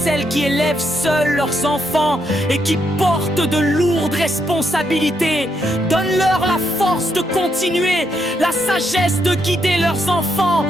qui élèvent seules leurs enfants et qui portent de lourdes responsabilités. Donne-leur la force de continuer, la sagesse de guider leurs enfants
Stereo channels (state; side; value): normal; both; correlation 0.78